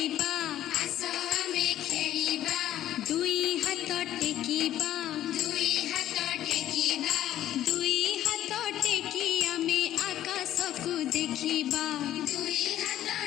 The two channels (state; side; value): quieter; right; 12.4 dB